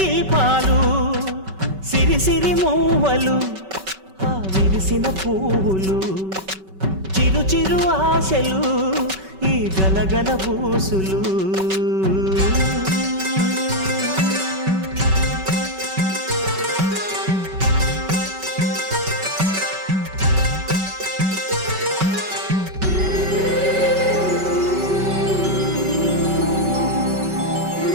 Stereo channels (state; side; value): late; left; 5.3 ms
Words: సిరి సిరి మూవలు ఆ విరిసిన పువ్వులు చిరు చిరు ఆశలు ఈ గలగల ఊసులు